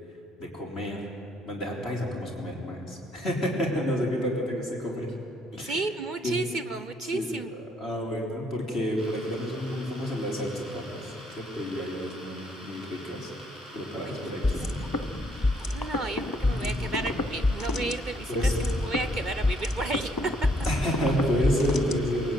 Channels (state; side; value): normal; both; correlation 0.69